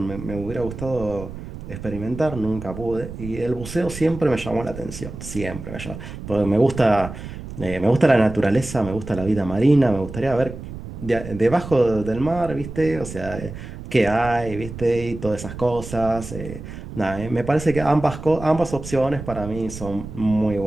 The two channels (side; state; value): right; noise; rumble, 11 dB below the sound